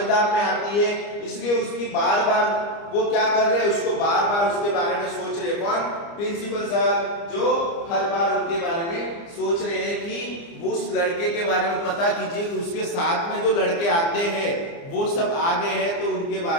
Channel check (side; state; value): right; late; 30 ms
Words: में आती है, इसलिए उसकी बार बार वो क्या कर रहे हैं, उसको बार बार उसके बारे में सोच रहे। कौन, प्रिंसिपल सर, जो हर बार उनके बारे में सोच रहे हैं कि वो उस लड़के के बारे में पता कीजिए, उसके साथ में जो लड़के आते हैं वो सब आगे हैं, तो उनके